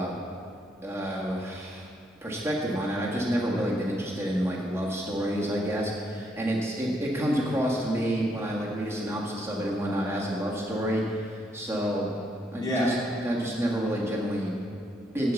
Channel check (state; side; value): normal; both; correlation 0.75